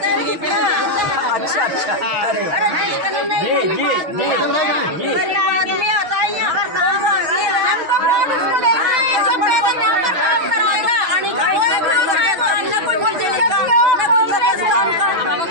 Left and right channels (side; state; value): left; late; 6.1 ms